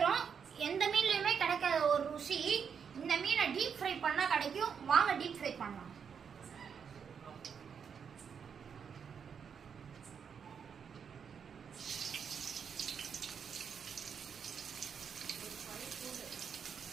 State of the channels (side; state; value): left; quieter; 6.9 dB